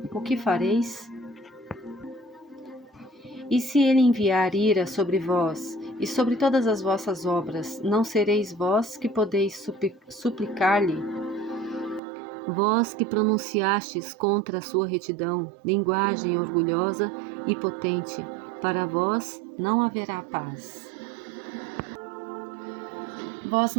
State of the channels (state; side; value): drops out; left; at 12.0 s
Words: o que fareis? E se ele enviar ira sobre vós, e sobre todas as vossas obras, não sereis vós que podeis suplicar-lhe? Vós que pronunciastes contra a sua retidão, linguagem orgulhosa e potente, para vós não haverá paz. Vós